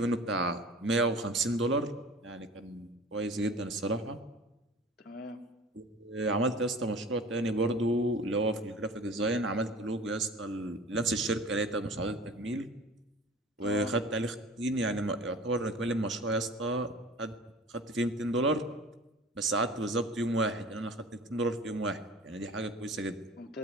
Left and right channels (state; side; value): normal; both; correlation 0.41